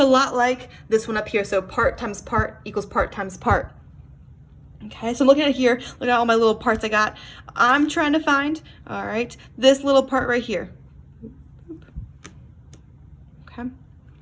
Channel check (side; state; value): both; identical; correlation 1.00